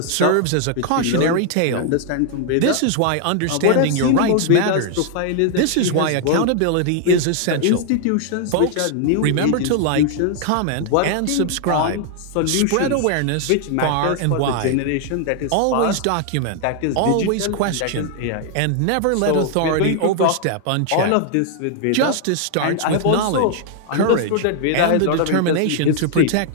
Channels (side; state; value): both; different; correlation 0.00